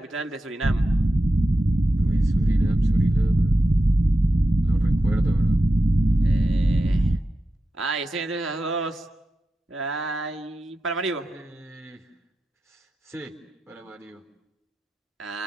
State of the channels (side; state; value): both; normal; correlation 0.91